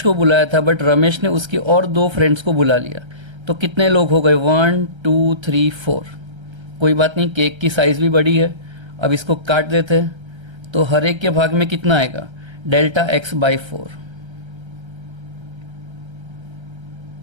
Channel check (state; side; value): late; left; 1.3 ms